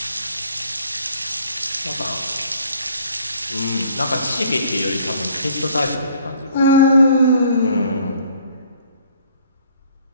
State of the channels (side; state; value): both; inverted; correlation -0.57